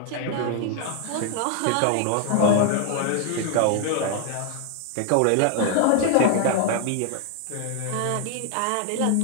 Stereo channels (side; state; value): both; different; correlation 0.00